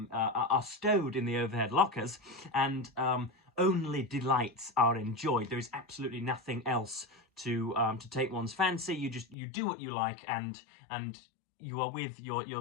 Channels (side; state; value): right; drops out; at 9.3 s